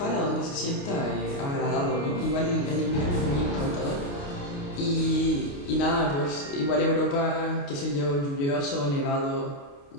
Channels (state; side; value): late; right; 28 ms